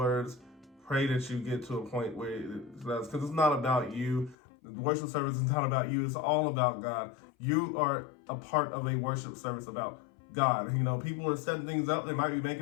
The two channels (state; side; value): drops out; right; at 4.4 s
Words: pray that you get to a point where because it's not about you. The worship service is not about you. It's all about God. You are a part of a worship service about God. People are setting things up. They might be